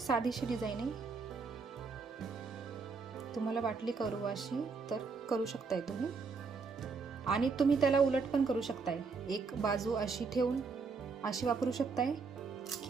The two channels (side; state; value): left; quieter; 4.8 dB